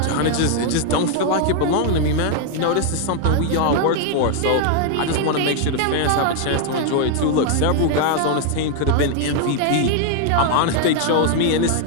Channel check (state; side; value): different; both; correlation 0.00